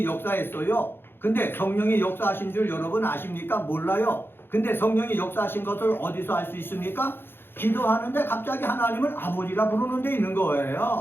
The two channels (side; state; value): right; late; 0.10 ms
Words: 역사했어요. 근데 성령이 역사하신 줄 여러분 아십니까? 몰라요. 근데 성령이 역사하신 것을 어디서 알 수 있습니까? 기도하는데 갑자기 하나님을 아버지라 부르는 데 있는